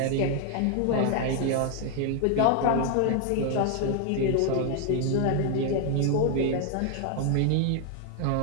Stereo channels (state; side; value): different; both; correlation 0.00